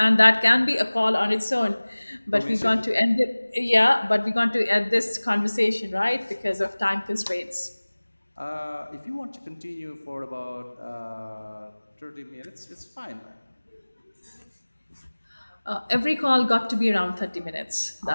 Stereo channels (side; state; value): both; inverted; correlation -1.00